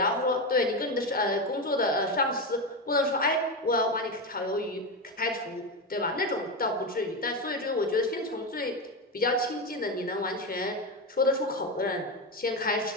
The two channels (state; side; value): normal; both; correlation 0.15